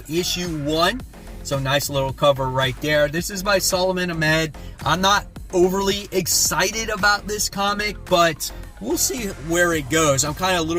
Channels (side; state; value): both; identical; correlation 1.00